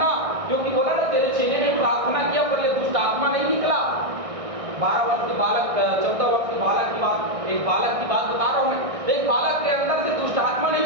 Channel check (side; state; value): left; late; 1.6 ms